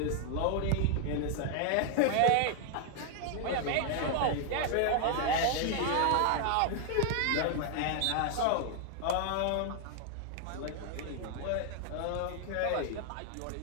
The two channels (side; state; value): both; different; correlation 0.00